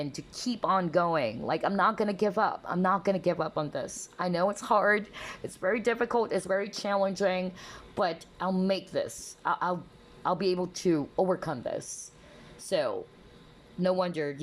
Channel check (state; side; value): identical; both; correlation 1.00